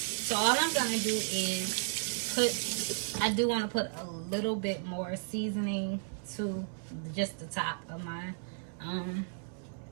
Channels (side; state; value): left; silent; digital silence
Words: So all I'm gonna do is I do want to put a little bit more seasoning to just the top of my